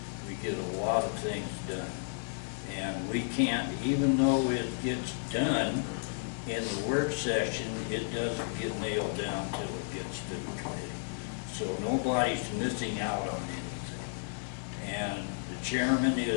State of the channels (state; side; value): silent; right; digital silence